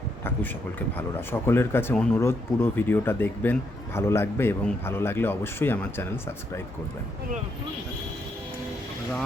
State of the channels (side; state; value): both; normal; correlation 0.77